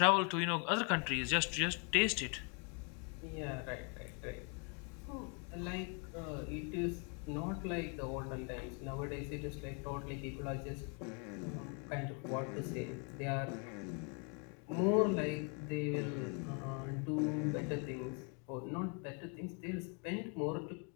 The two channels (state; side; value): quieter; right; 37.0 dB